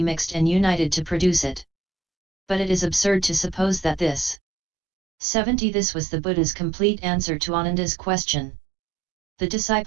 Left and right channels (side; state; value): left; drops out; at 4.4 s